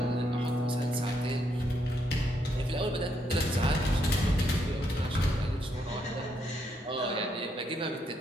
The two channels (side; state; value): both; normal; correlation 0.76